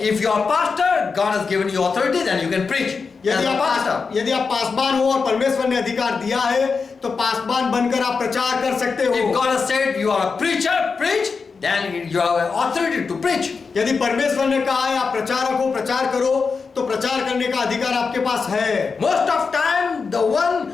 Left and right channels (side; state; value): right; quieter; 5.0 dB